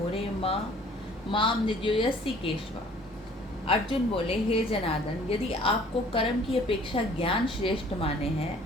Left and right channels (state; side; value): normal; both; correlation 0.54